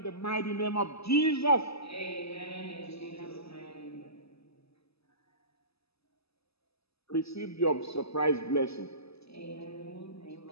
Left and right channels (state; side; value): late; right; 0.78 ms